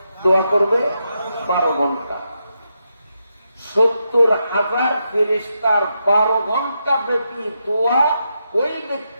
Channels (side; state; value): both; inverted; correlation -0.84